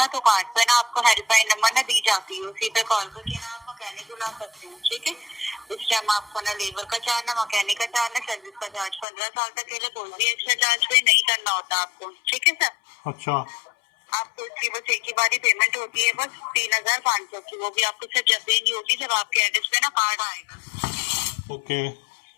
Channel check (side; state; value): right; drops out; at 9.1 s